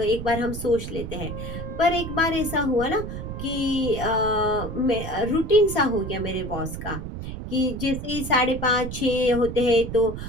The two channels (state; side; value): noise; right; rumble, 7 dB below the sound